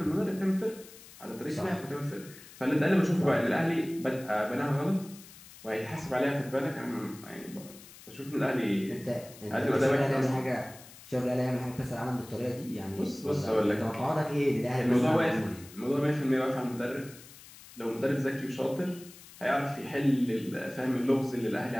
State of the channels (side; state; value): left; noise; hiss, 19 dB below the sound